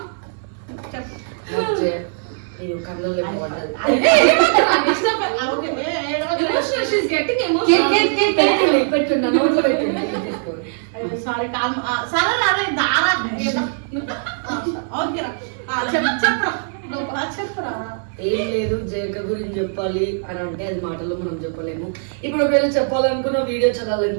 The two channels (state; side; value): silent; left; digital silence